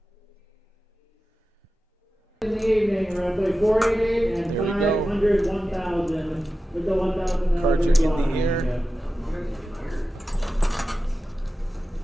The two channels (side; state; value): both; normal; correlation 0.93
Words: In the evening, we're going to play 488 and 500, 1,000. With the 1,000 cards are in the air. Yeah.